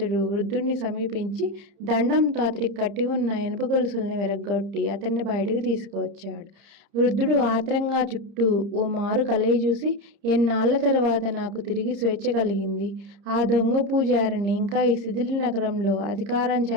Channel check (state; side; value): late; left; 30 ms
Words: వృద్ధుణ్ణి సమీపించి దండంతో అతడికి కట్టి ఉన్న ఇనుప గొలుసుల్ని విరగ్గొట్టి అతన్ని బయటకు తీసుకువచ్చాడు. వృద్ధుడు ఆత్రంగా చుట్టూ ఓ మారు కలయి చూసి, ఎన్నాళ్ల తర్వాత నాకు తిరిగి స్వేచ్ఛ కలిగింది. ఆ దొంగ పూజారిని ఇంకా ఈ శిథిల నగరంలో అధికారం